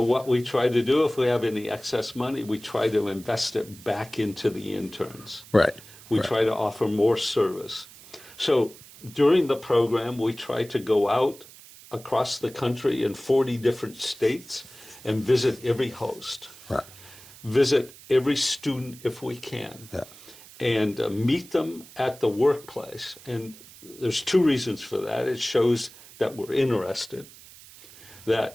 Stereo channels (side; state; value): right; noise; hiss, 20 dB below the sound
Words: what we try to do, if we have any excess money, we try to invest it back into the interns. Right. We try to offer more service. So during the program, we try to go out across the country in 40 different states and visit every host. Right. Visit every student if we can. Yeah. And meet them at the workplace. And there's two reasons for that. It shows that we're interested.